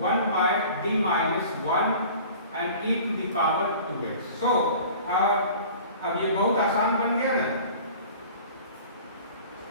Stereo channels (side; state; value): both; inverted; correlation -0.44